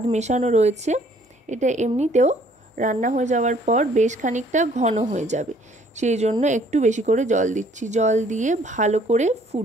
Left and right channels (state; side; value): normal; both; correlation 0.60